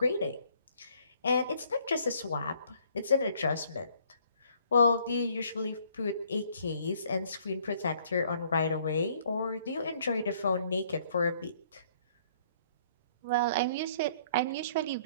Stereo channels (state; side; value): inverted; both; correlation -0.63